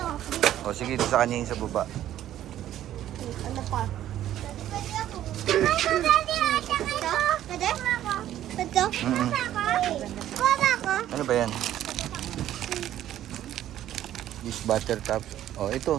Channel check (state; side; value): quieter; left; 12.2 dB